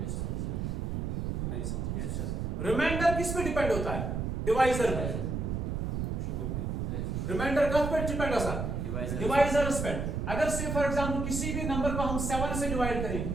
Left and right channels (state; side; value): noise; right; rumble, 2 dB below the sound